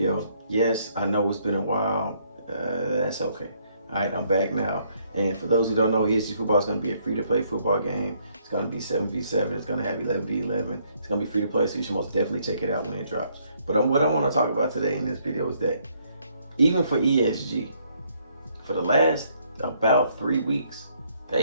Yes, I know it's been a while. That's okay. All right, I'm back now. And for those who don't know, ESG football is going to be a free-to-play football game. It's going to be 7v7. It's going to have 11v11. It's going to be free-to-play, so you should most definitely check it out when it drops. But what I want to talk about today in this video is that even for ESG, for the last about 3 weeks,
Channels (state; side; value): inverted; both; correlation -0.69